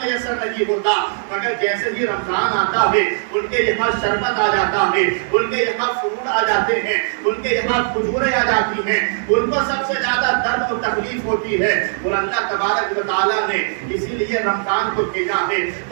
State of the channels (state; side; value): silent; left; 66 dB below the other